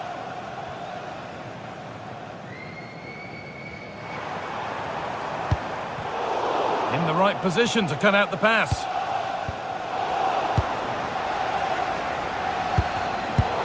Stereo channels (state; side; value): identical; both; correlation 1.00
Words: In the right position to cut out the pass.